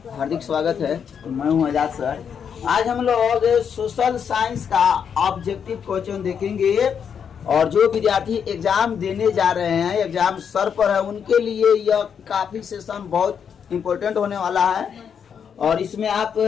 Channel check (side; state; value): right; quieter; 7.4 dB